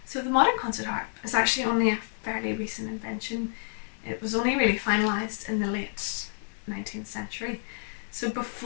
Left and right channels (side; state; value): right; silent; digital silence